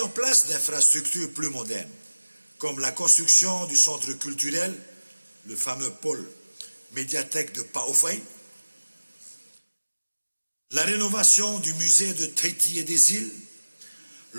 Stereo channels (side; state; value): both; inverted; correlation -1.00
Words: en place d'infrastructures plus modernes, comme la construction du centre culturel, le fameux pôle médiathèque de Paofay, la rénovation du musée de Tahiti et des îles,